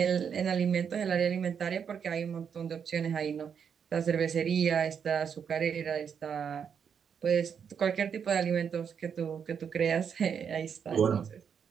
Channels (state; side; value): quieter; left; 7.3 dB